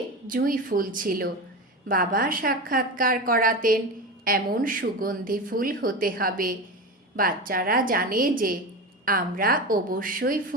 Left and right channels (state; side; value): normal; both; correlation 0.23